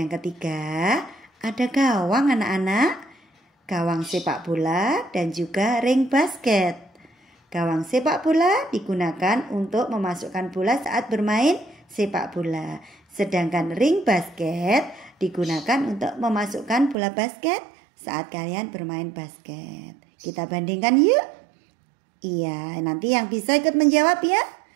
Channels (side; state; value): left; drops out; at 16.9 s